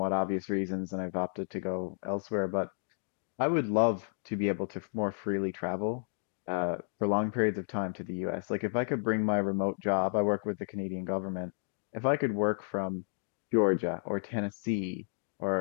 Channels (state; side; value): silent; right; digital silence